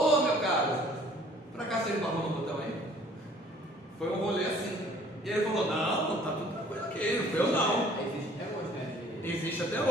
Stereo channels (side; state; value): both; normal; correlation 0.55